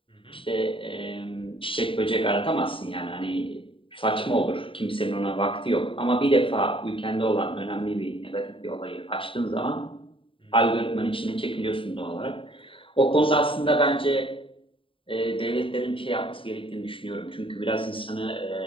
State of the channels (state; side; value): late; right; 0.25 ms